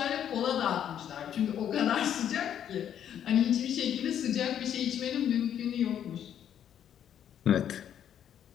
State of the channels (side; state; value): right; quieter; 9.6 dB